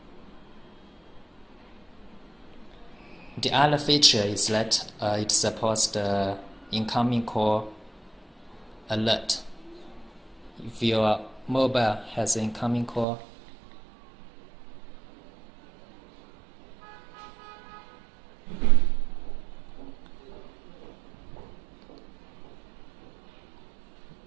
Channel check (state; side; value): drops out; left; at 13.1 s